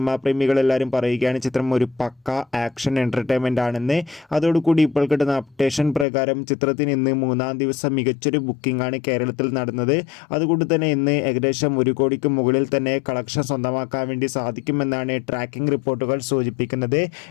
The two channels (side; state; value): right; drops out; at 6.1 s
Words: പ്രേമികളെല്ലാവരും പറയുകയാണ് ചിത്രം ഒരു പക്ക ആക്ഷൻ എൻ്റർടൈൻമെൻ്റ് ആണെന്ന്. അതോടുകൂടി ഇപ്പോൾ കിട്ടുന്ന അപ്ഡേഷൻ പ്രകാരം ചിത്രത്തിന് ഇന്ന് മൂന്നാം ദിവസം മികച്ചൊരു ബുക്കിംഗ് ആണ് കേരളത്തിൽ നടന്നത്. അതുകൊണ്ട് തന്നെ ഇന്ന് ഏകദേശം 1 കോടിക്ക് മുകളിൽ തന്നെ കളക്ഷൻ സ്വന്തമാക്കാൻ വേണ്ടി സാധിക്കുമെന്നാണ് ട്രാക്കിംഗ് റിപ്പോർട്ടുകൾ സൂചിപ്പിക്കുന്നത്.